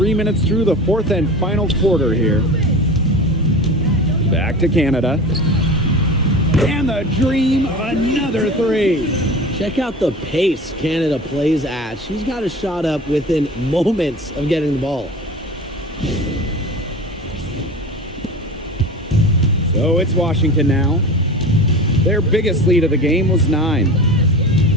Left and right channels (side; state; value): both; normal; correlation 0.34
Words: minutes through the fourth and final quarter here. Back to Canada. And the Dream, another 3. Check out the pace Canada plays at. She's got a shot up within moments of getting the ball. So it's Washington now. Their biggest lead of the game was 9.